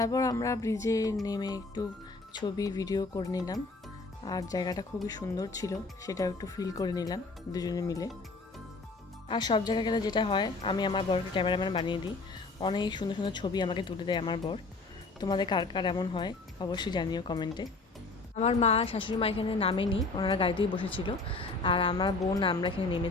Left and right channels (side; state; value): right; quieter; 3.7 dB